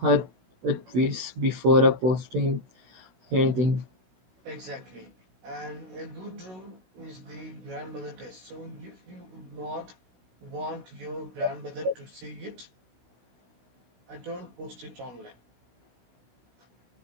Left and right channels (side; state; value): left; late; 16 ms